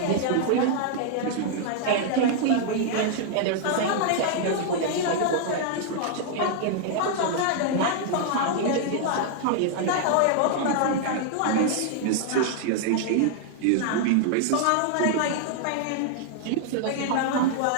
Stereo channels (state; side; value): different; both; correlation -0.01